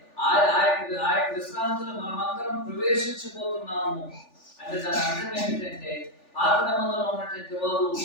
ఆ యొక్క విశ్రాంతిలో మనమందరం ప్రవేశించబోతున్నాము. అంటే దాని అర్థం ఏమిటంటే, పాత నిబంధనలో ఉన్నటువంటి వారు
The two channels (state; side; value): late; right; 3.4 ms